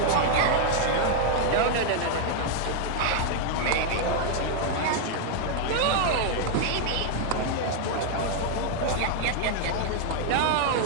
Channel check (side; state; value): both; different; correlation 0.00